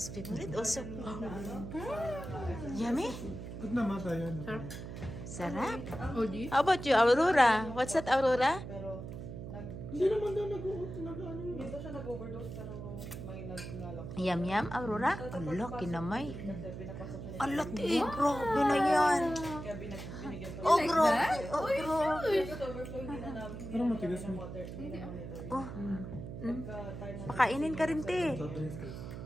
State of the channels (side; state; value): right; noise; hum, 9 dB below the sound